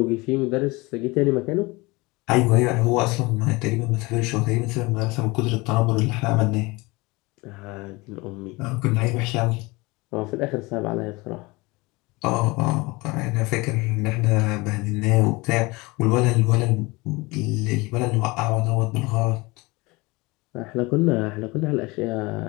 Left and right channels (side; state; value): right; quieter; 23.9 dB